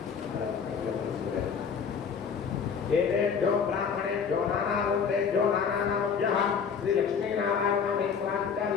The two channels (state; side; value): quieter; right; 6.4 dB